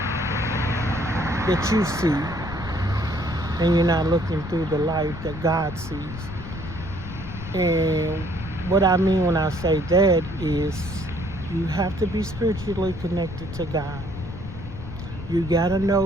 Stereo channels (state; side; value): noise; left; rumble, 10 dB below the sound